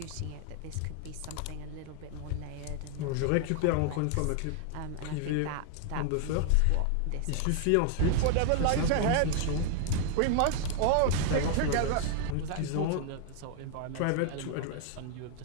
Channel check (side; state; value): both; different; correlation 0.00